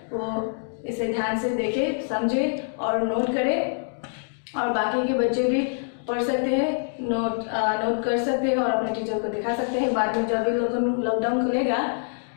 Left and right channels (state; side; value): silent; right; digital silence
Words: वो इसे ध्यान से देखें, समझें और नोट करें। और बाकी के बच्चे भी पढ़ सकते हैं, नोट कर सकते हैं और अपने टीचर को दिखा सकते हैं बाद में जब भी लॉकडाउन खुलेगा।